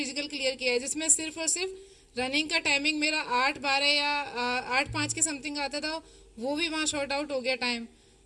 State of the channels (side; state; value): both; identical; correlation 1.00